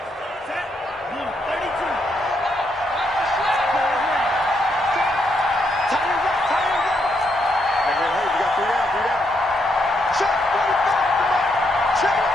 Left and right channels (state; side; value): normal; both; correlation 0.77